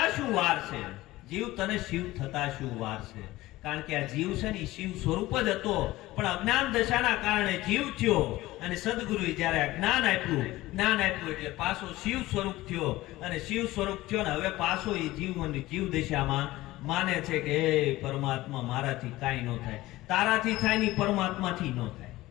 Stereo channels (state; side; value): quieter; right; 17.7 dB